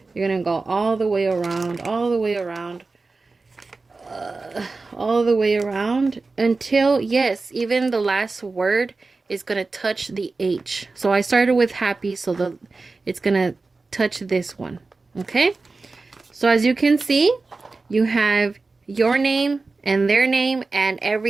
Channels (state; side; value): quieter; left; 3.8 dB